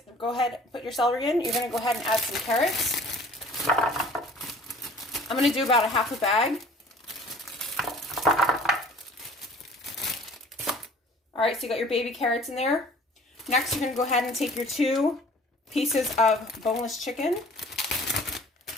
go ahead, put your celery in. You're going to go ahead and add some carrots. I'm going to do about a half a bag. All right, so you got your baby carrots in there. Next, you're going to go ahead and take your 2 pieces of boneless chicken.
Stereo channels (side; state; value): both; normal; correlation 0.49